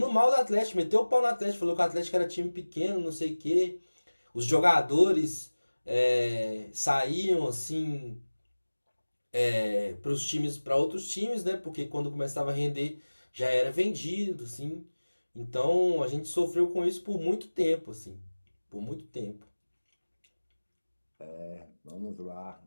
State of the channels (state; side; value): inverted; both; correlation -1.00